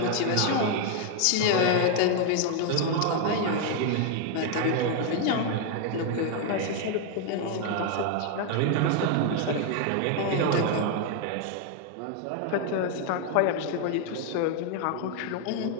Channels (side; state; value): both; different; correlation 0.00